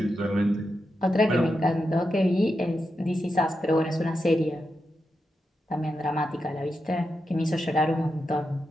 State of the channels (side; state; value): both; normal; correlation 0.87